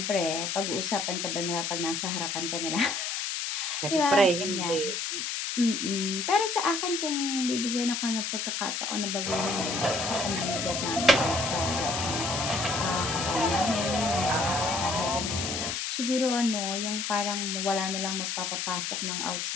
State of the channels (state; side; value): noise; left; hiss, 2 dB below the sound